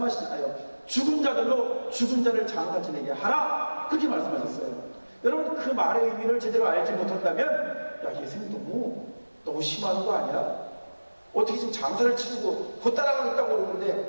죽은 자들로 죽은 자를 장사 지내게 하라. 그렇게 말씀하셨어요. 여러분, 그 말의 의미를 제대로 알지 못한다면, 야, 예수님 너무 심한 거 아니야? 어떻게 지금 장사를 치르고 곧 따라가겠다고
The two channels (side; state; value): both; inverted; correlation -1.00